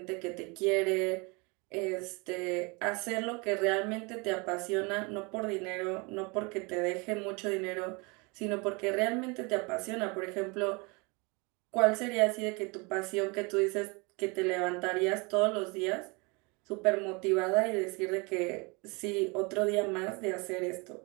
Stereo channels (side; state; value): left; quieter; 28.9 dB